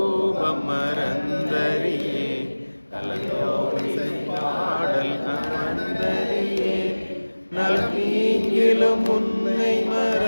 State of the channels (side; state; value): both; inverted; correlation -1.00